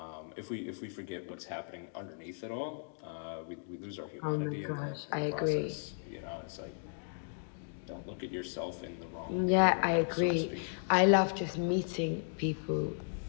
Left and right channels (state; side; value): silent; right; digital silence